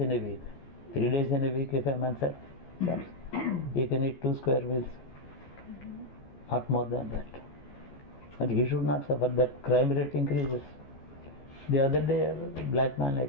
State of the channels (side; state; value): right; late; 14 ms